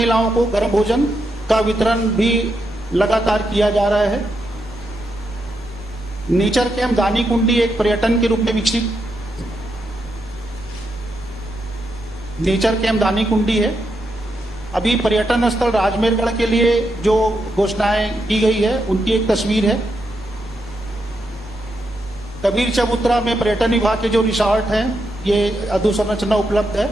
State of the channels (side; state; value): both; normal; correlation 0.83